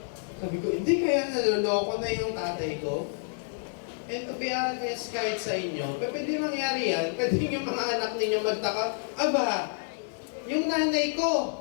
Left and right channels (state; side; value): silent; right; 59 dB below the other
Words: sabi ko, hindi kaya naloloko na yung tatay ko? And to be honest, kahit sa inyo, pwede mangyari yan, pwede yung mga anak ninyo magtaka, aba, yung nanay ko,